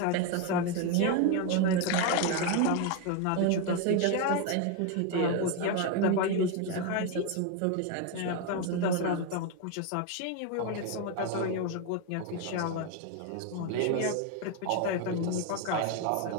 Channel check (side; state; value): both; different; correlation 0.02